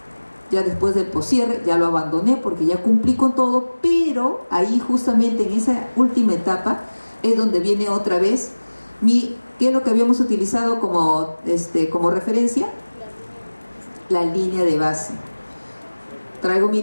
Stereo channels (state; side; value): inverted; both; correlation -1.00